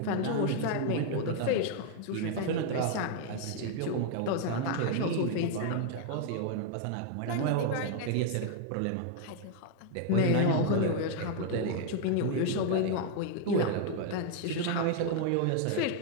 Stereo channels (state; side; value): different; both; correlation 0.00